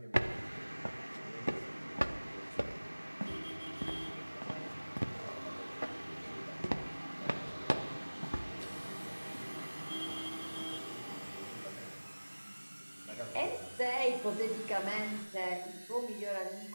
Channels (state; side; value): inverted; both; correlation -1.00